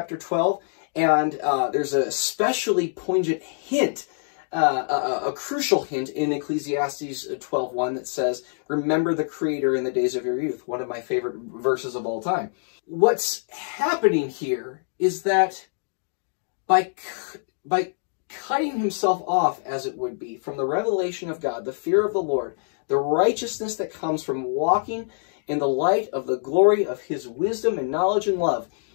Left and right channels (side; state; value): right; silent; digital silence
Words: 12. And there's a especially poignant hint, a crucial hint in Ecclesiastes 12:1 that says, "Remember the Creator in the days of your youth," one of my favorite verses of all time. What's happening here is that by cutting himself off, as it would be, from the revelation of God, the fear of the Lord, the righteousness that comes from walking in the light of the glory of his wisdom and knowledge and love,